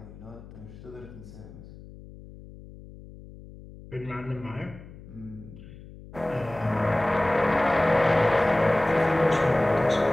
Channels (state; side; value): noise; left; hum, 18 dB below the sound